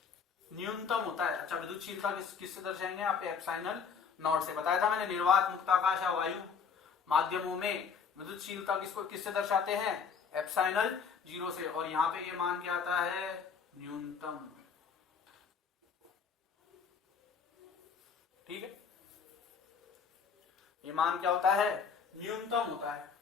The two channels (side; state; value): right; quieter; 6.2 dB